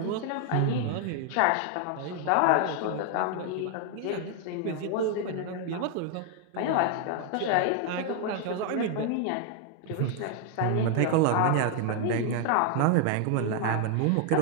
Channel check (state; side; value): different; both; correlation 0.00